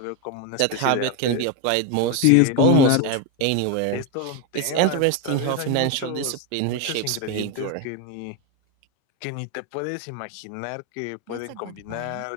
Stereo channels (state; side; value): different; both; correlation 0.02